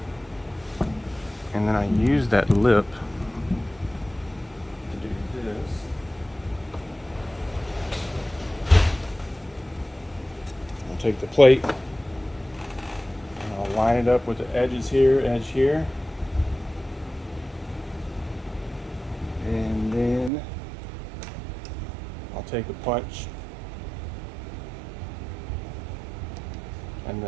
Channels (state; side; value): drops out; left; at 20.3 s